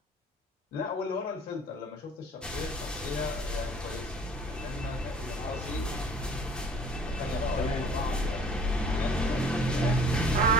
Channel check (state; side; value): normal; both; correlation 0.51